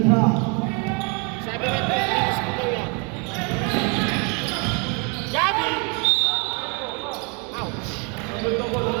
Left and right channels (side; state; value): left; quieter; 34.1 dB